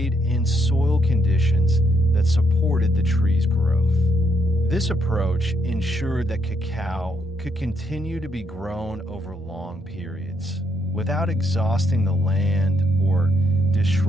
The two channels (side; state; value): both; normal; correlation 0.75